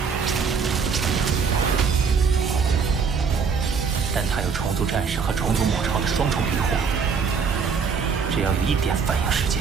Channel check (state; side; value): quieter; left; 5.8 dB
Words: 但她有虫族战士和虫族母巢的双重庇护，只要有一点反应时